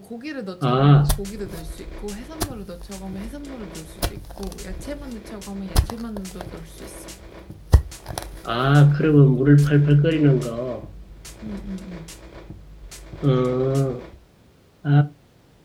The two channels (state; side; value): identical; both; correlation 1.00